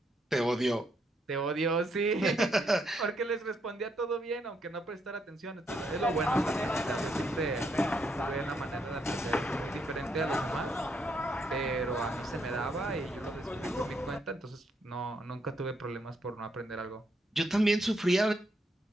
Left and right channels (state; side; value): normal; both; correlation 0.76